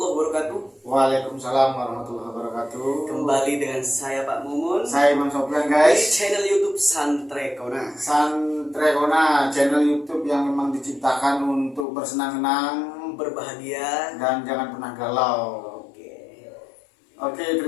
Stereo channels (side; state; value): right; drops out; at 11.9 s